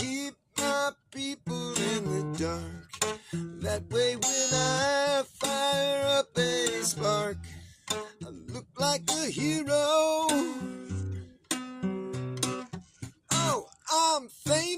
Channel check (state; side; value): identical; both; correlation 1.00